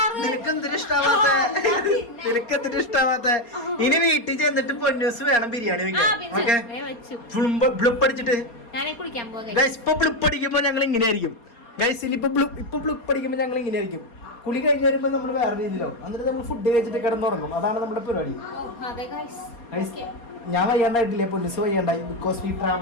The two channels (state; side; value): late; right; 4.3 ms